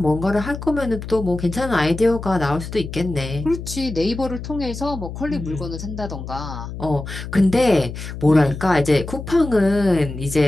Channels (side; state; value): left; noise; hum, 9 dB below the sound